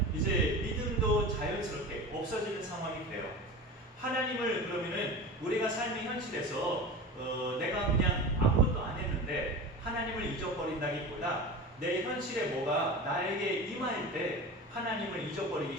이제 믿음도 자연스럽게 없어지는 상황이 돼요. 하나님을 그러면은 우리가 삶의 현실에서 내가 그냥 아무것도 안 했는데 하나님을 잊어버린다기보다 내 현실에 뭐가 나에게 임할 때 하나님을 잊어버리기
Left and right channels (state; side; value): normal; both; correlation 0.31